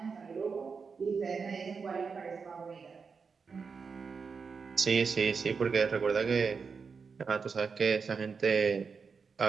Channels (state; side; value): quieter; left; 5.4 dB